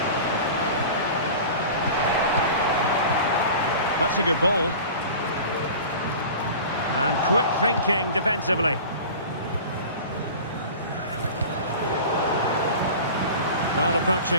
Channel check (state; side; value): inverted; both; correlation -0.37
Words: That's a good ball. And quick thinking defensively. Well,